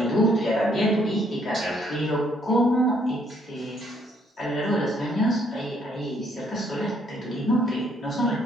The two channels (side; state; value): both; normal; correlation 0.68